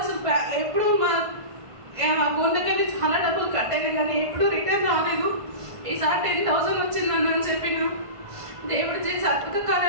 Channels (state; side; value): late; left; 1.5 ms